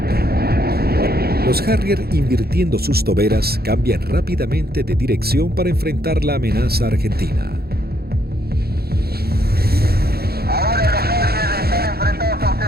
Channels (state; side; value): late; left; 0.46 ms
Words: Los Harrier, invirtiendo sus toberas, cambian rápidamente de dirección para enfrentar la amenaza argentina. Ahora los Harrier están enfrentados a